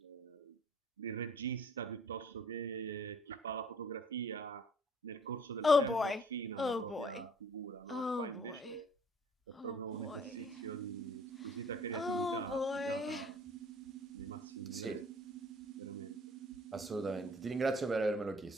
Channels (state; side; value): normal; both; correlation 0.55